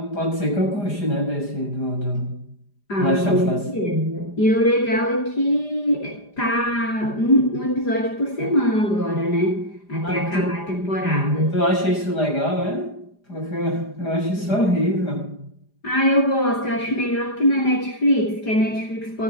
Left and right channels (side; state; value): right; late; 4.9 ms